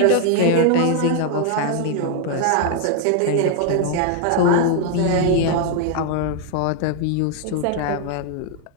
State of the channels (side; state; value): both; different; correlation 0.00